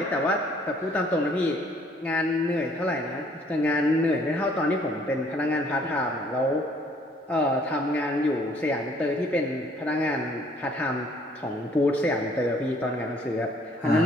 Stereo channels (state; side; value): normal; both; correlation 0.61